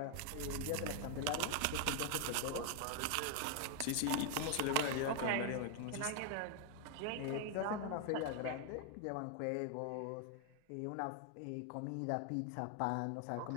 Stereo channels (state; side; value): different; both; correlation 0.00